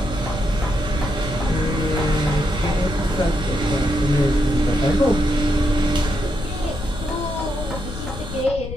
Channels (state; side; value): noise; left; rumble, 9 dB below the sound